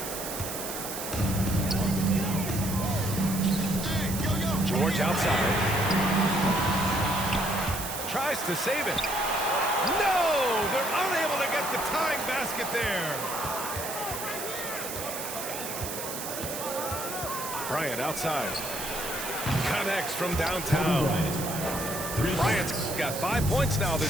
George outside. Tries to save it. No! They're unable to get the tying basket there. Bryant outside. Connects from downtown. Bryant's got 5 points now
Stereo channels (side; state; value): right; noise; hiss, 6 dB below the sound